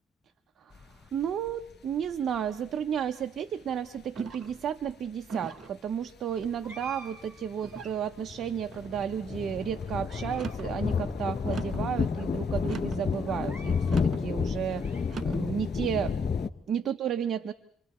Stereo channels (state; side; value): normal; both; correlation 0.66